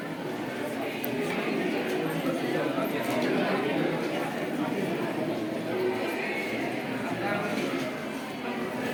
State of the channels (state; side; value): identical; both; correlation 1.00